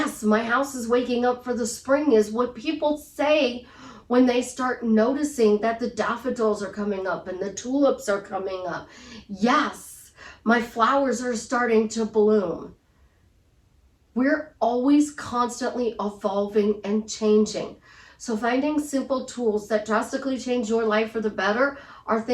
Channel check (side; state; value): both; identical; correlation 1.00